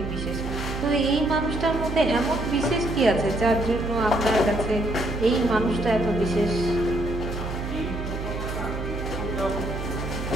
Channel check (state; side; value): noise; right; hum, 6 dB below the sound